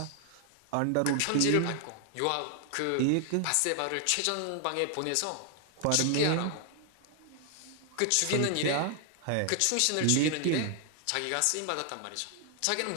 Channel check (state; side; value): different; both; correlation 0.00